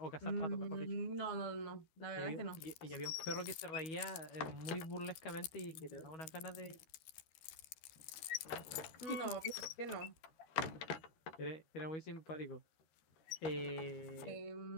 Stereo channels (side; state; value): right; late; 13 ms